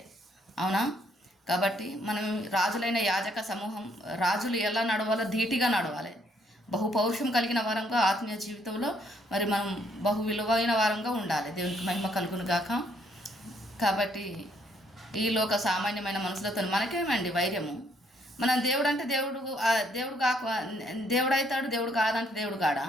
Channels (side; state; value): both; normal; correlation 0.68